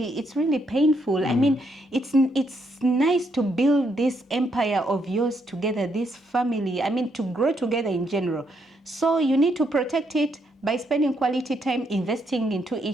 painful. I mean, it's nice to build this empire of yours together, this family. I mean, to grow together in general. So you need to protect it by spending quality time, investing into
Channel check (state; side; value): normal; both; correlation 0.76